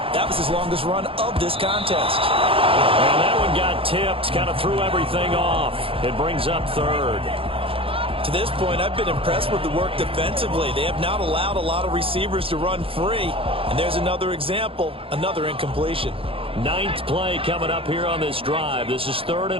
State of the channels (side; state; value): left; late; 0.27 ms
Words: was his longest run of this contest. And that one got tipped, kind of threw everything off. It brings up 3rd. To this point, I've been impressed with the work defensively. They have not allowed a lot of receivers to run free. And there's another example, another incompletion. 9th play coming up here on this drive. This is 3rd